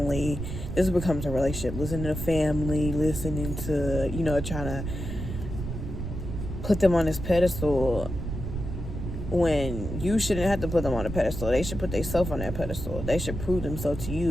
This becomes a relationship. Listening to family, listening to, you know, trying to put them on this pedestal when you shouldn't have to put them on a pedestal. They should put themselves on that pedestal. They should prove themselves to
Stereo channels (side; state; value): right; noise; rumble, 6 dB below the sound